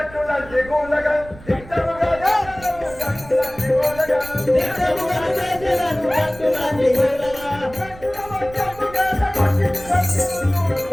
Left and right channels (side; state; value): right; noise; rumble, 18 dB below the sound